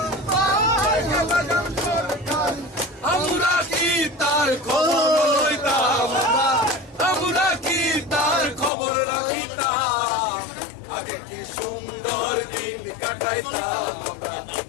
আমরা কি তার খবর লইতাম আমরা কি তার খবর রাখিতাম আগে কি সুন্দর দিন কাটাইতাম আমরা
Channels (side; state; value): right; drops out; at 8.7 s